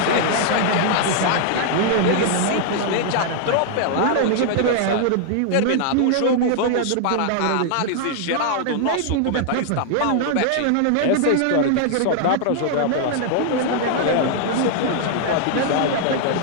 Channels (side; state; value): both; different; correlation 0.00